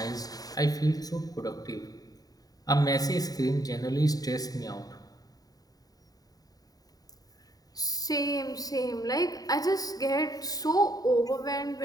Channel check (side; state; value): right; late; 0.18 ms